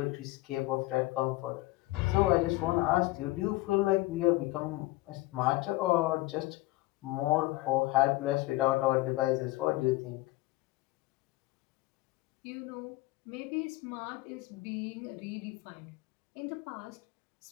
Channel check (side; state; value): right; quieter; 19.6 dB